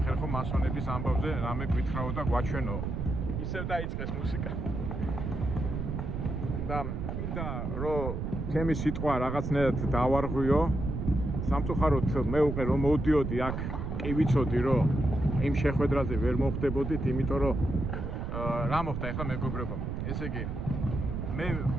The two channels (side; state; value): right; noise; rumble, 3 dB below the sound